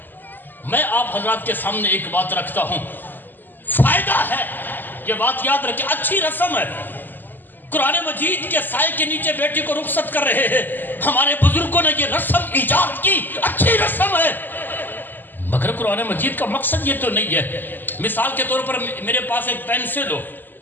میں آپ حضرات کے سامنے ایک بات رکھتا ہوں، فائدہ ہے، یہ بات یاد رکھیں، اچھی رسم ہے. قرآن مجید کے سائے کے نیچے بیٹی کو رخصت کر رہے ہیں، ہمارے بزرگوں نے یہ رسم ایجاد کی، اچھی رسم ہے، مگر قرآن مجید کا مقصد یہ تو نہیں ہے. مثال کے طور پر میرے پاس ایک پینسل ہو،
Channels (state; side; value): late; right; 0.089 ms